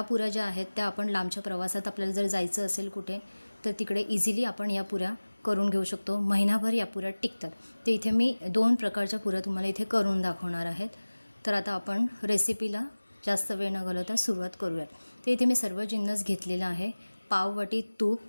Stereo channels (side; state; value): both; inverted; correlation -1.00